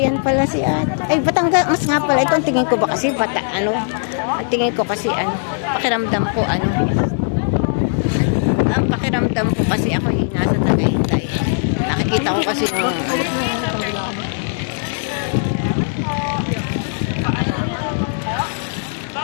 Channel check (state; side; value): silent; right; digital silence